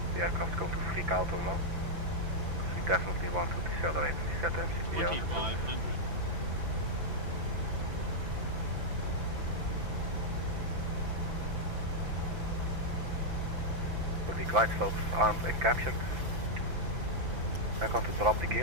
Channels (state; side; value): late; left; 5.9 ms